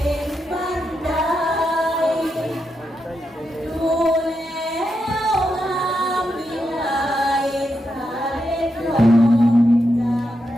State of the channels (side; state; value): both; normal; correlation 0.85